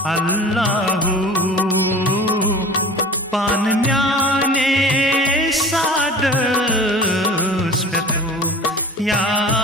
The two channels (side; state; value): both; normal; correlation 0.38